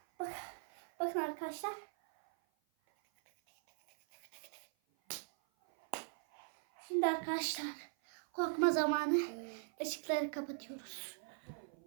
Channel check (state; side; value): silent; left; 51 dB below the other